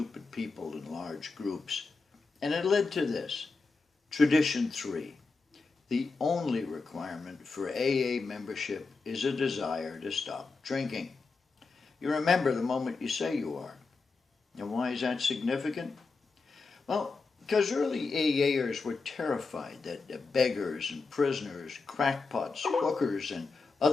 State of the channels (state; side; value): quieter; right; 4.2 dB